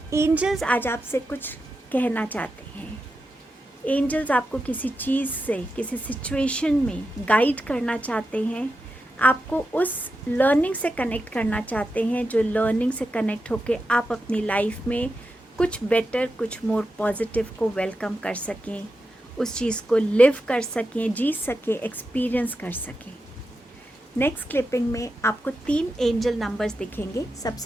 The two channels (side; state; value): both; normal; correlation 0.89